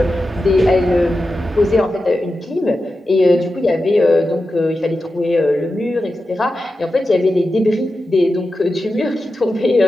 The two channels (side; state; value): both; normal; correlation 0.91